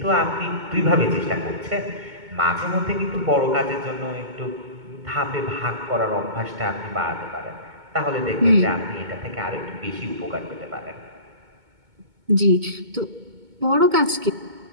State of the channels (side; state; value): left; late; 2.2 ms